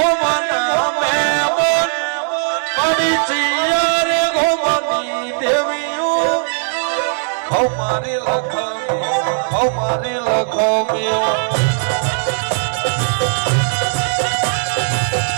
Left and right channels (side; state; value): left; silent; digital silence